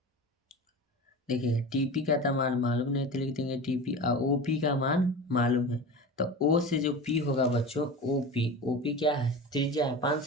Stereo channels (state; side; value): normal; both; correlation 0.31